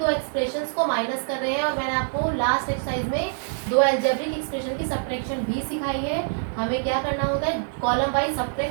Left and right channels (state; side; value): silent; left; digital silence